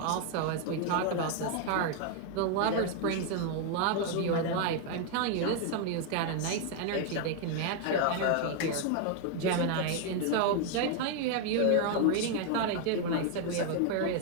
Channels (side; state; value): both; different; correlation 0.00